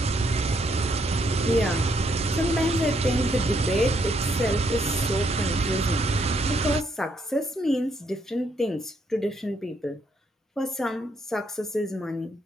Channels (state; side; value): normal; both; correlation 0.73